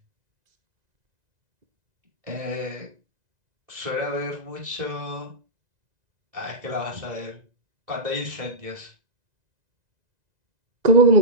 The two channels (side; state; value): left; late; 2.0 ms